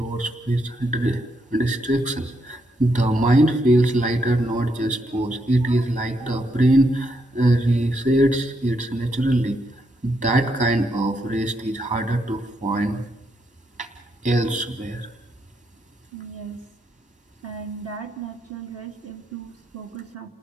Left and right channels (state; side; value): normal; both; correlation 0.78